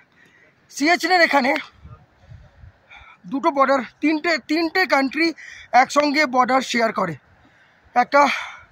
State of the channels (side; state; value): both; identical; correlation 1.00